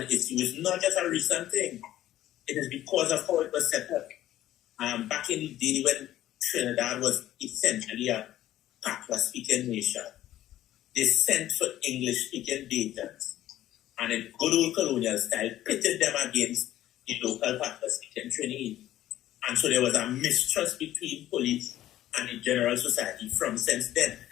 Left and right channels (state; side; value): quieter; right; 13.4 dB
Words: issue is not just a recent thing. It is because of how it was set up. Back in the day when Trinidad was essentially a Patois-speaking nation, they sent for English-speaking agents, and in good old colonial style, pitted them against the local Patois-speaking Trinidad. And so there was a mistrust between police and the general society from since then